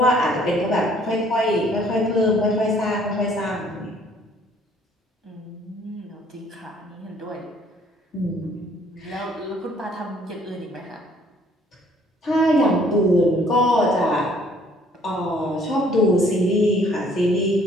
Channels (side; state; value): both; normal; correlation 0.60